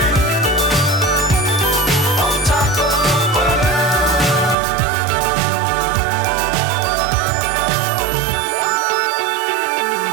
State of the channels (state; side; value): drops out; left; at 4.5 s